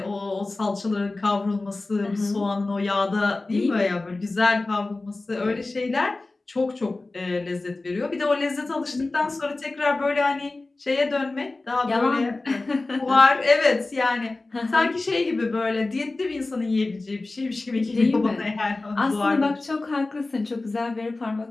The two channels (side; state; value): right; quieter; 3.2 dB